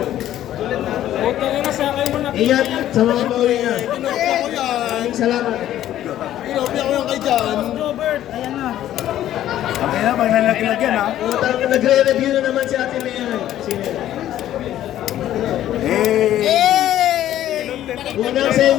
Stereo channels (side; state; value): right; quieter; 12.5 dB